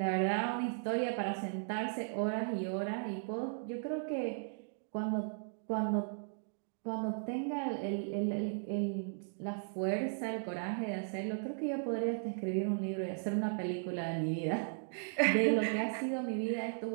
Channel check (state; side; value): silent; left; digital silence